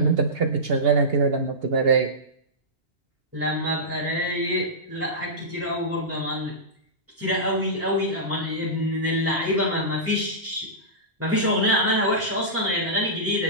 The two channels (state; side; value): normal; both; correlation -0.18